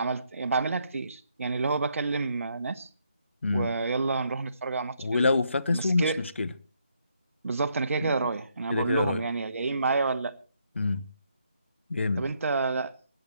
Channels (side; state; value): both; inverted; correlation -0.74